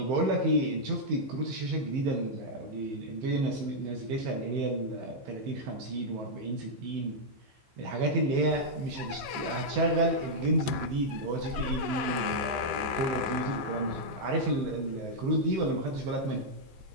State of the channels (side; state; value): left; late; 14 ms